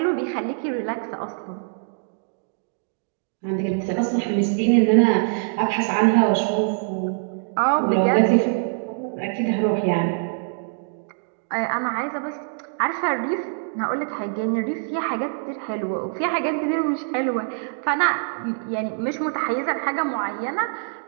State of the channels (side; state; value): left; silent; digital silence